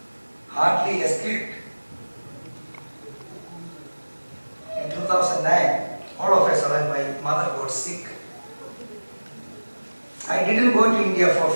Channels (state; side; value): inverted; both; correlation -1.00